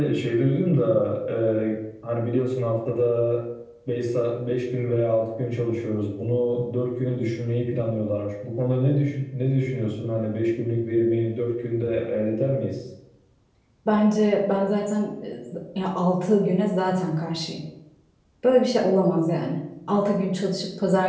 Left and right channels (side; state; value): both; identical; correlation 1.00